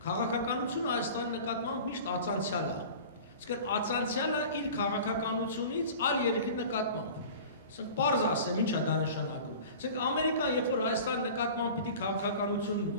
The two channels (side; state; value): both; inverted; correlation -0.39